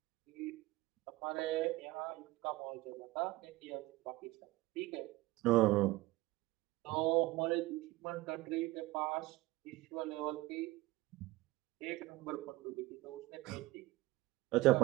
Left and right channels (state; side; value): quieter; left; 19.6 dB